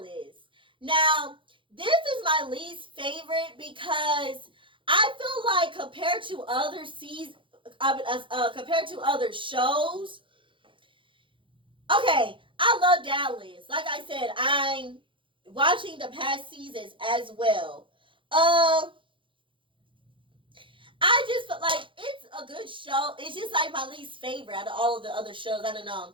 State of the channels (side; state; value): left; late; 0.25 ms